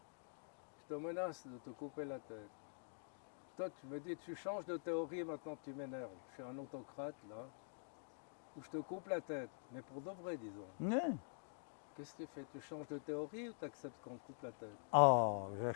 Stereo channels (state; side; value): silent; right; digital silence